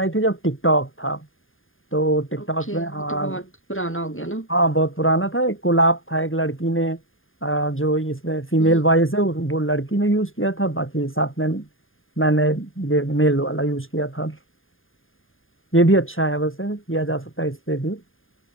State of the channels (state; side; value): late; right; 0.59 ms